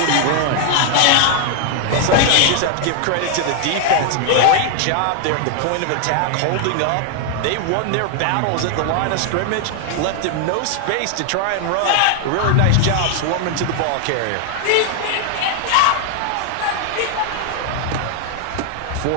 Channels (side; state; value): both; different; correlation 0.00